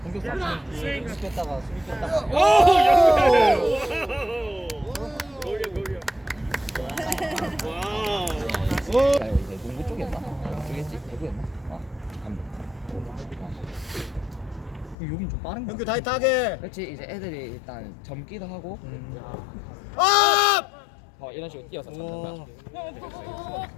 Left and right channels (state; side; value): drops out; right; at 15.0 s